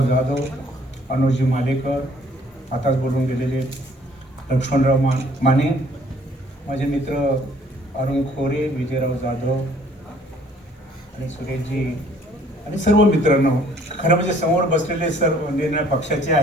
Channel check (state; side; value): normal; both; correlation 0.59